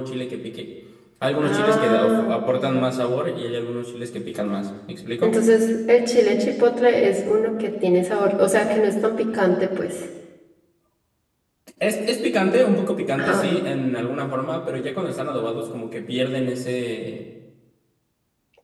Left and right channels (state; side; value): identical; both; correlation 1.00